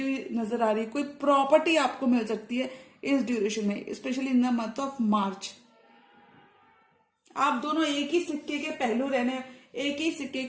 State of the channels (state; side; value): identical; both; correlation 1.00